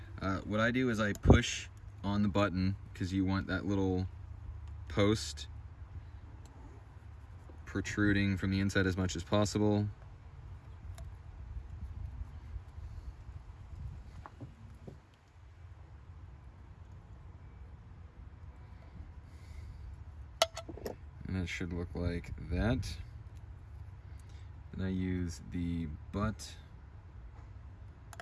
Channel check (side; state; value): both; identical; correlation 1.00